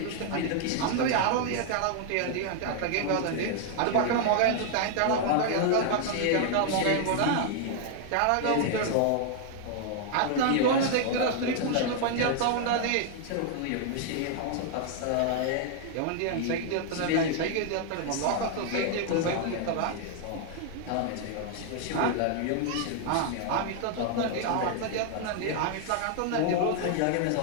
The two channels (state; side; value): different; both; correlation 0.00